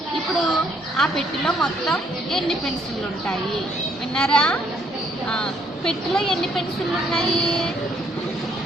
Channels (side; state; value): both; normal; correlation 0.67